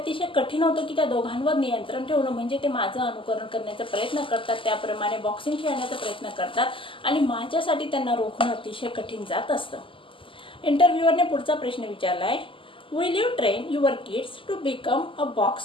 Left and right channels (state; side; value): late; right; 0.25 ms